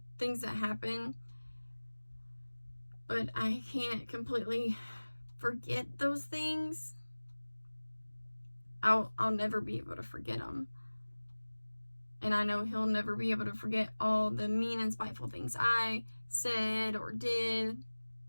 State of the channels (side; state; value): both; inverted; correlation -1.00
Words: things that happened, but I can't completely forget those things. I'll never be able to forget them. And I know he'll never be able to forget all the mean and spiteful things I said or did.